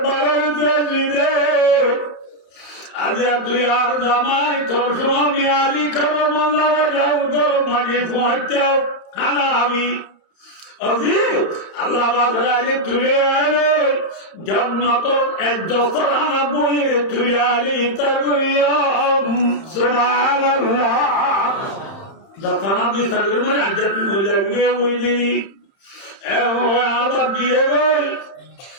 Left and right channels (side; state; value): right; late; 30 ms